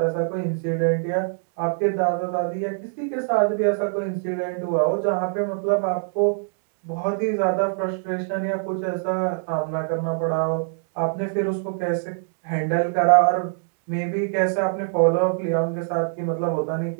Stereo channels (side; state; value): left; silent; digital silence